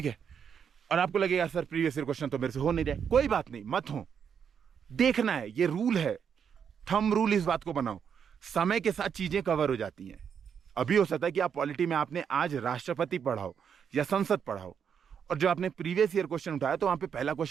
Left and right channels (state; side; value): quieter; left; 7.4 dB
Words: है, और आपको लगेगा सर प्रीवियस ईयर क्वेश्चन तो मेरे से हो नहीं रहा। कोई बात नहीं, मत हो, देखना है, ये रूल है, थंब रूल इस बात को बनाओ, समय के साथ चीजें कवर हो जाती हैं। अभी हो सकता है कि आप पॉलिटी में आपने आज राष्ट्रपति पढ़ा हो या संसद पढ़ा हो, और जो आपने प्रीवियस ईयर क्वेश्चन उठाया तो वहां पे पहला